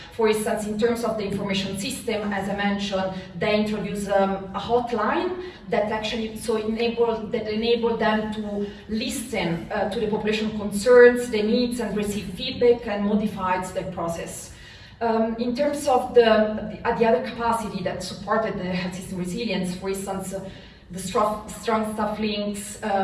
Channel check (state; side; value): identical; both; correlation 1.00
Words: For instance, in terms of the information system, as I mentioned, they introduced a hotline that actually enabled them to listen to the population concerns, their needs, and receive feedback and modified their process. In terms of the other capacity that supported the health system resilience, for instance, the strong staff links,